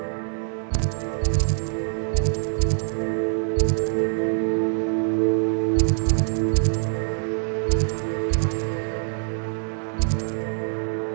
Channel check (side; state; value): left; silent; 62 dB below the other